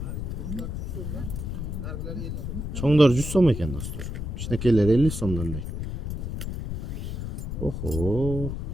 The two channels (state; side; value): noise; left; rumble, 4 dB below the sound